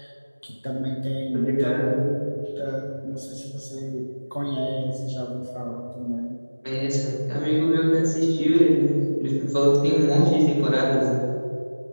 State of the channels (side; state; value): both; inverted; correlation -1.00